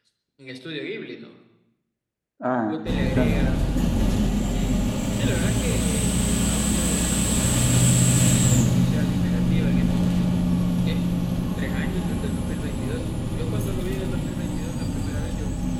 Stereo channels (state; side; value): identical; both; correlation 1.00